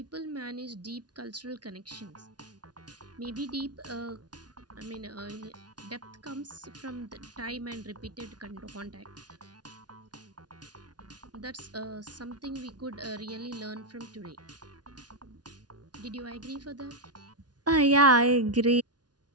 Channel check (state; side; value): late; left; 0.69 ms